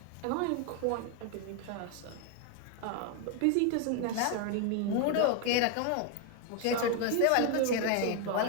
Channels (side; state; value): both; different; correlation 0.01